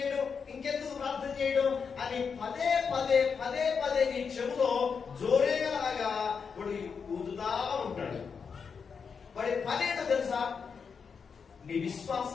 అని పదే నీ చెవులో జోరేలాగా వాడు ఊదుతా ఉంటాడు. వాడి పనేటో తెలుసా? నీ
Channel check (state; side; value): quieter; right; 6.0 dB